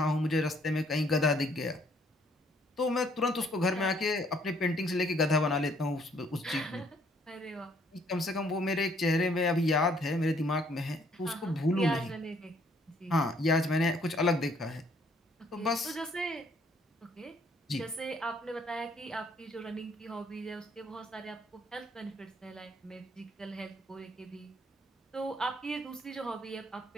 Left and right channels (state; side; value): normal; both; correlation 0.65